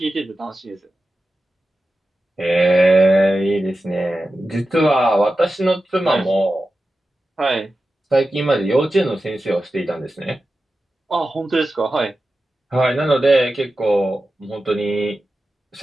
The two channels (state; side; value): normal; both; correlation 0.93